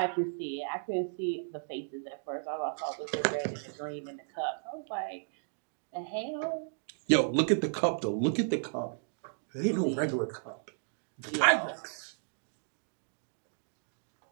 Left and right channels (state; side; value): silent; left; digital silence